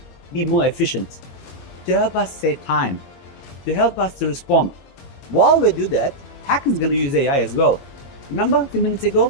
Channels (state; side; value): late; right; 22 ms